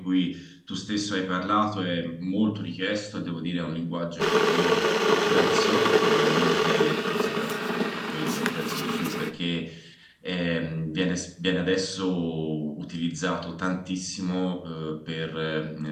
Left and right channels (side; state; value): both; identical; correlation 1.00